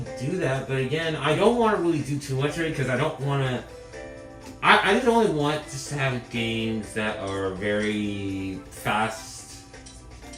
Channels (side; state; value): both; identical; correlation 1.00